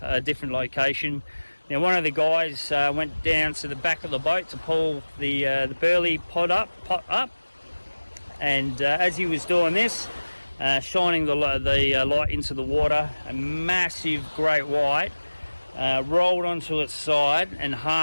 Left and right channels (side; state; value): both; inverted; correlation -1.00